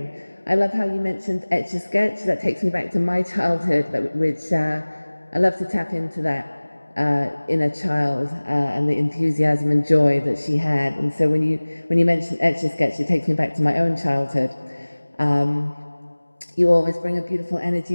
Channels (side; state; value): both; inverted; correlation -1.00